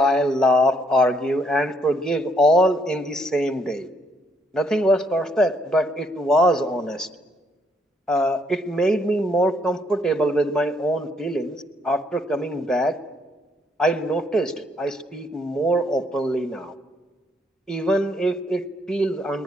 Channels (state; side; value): normal; both; correlation 0.70